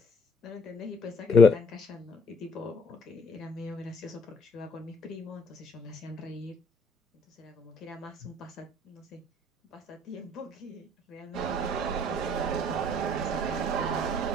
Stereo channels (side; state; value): both; normal; correlation 0.62